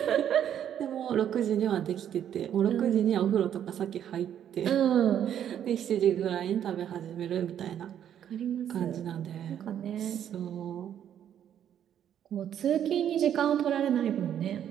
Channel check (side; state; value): left; quieter; 9.8 dB